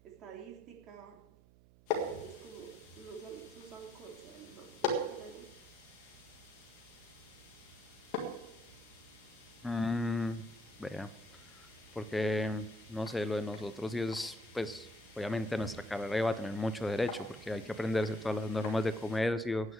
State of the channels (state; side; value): noise; right; hum, 25 dB below the sound